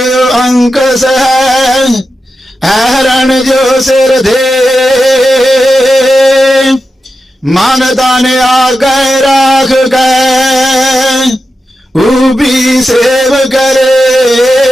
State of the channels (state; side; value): normal; both; correlation 0.90